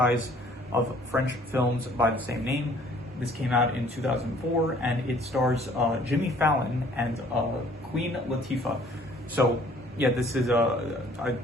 of French films by the same name. This came out in 2004, and it stars Jimmy Fallon and Queen Latifah. So, yeah, this is I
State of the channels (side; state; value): both; normal; correlation 0.57